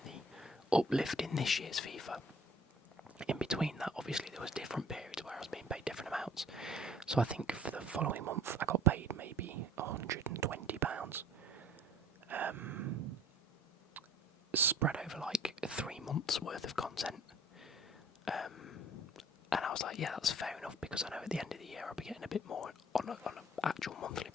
the uplift in this year's FIFA. In between that, obviously, there was different periods where I was being paid different amounts. So I think for the following month, I got paid maybe £120, spread over like 3 months worth of content. And I was like, yeah, that's fair enough, because I know at the end of the year I'll be getting a bit more on an actual monthly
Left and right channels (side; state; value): both; normal; correlation 0.52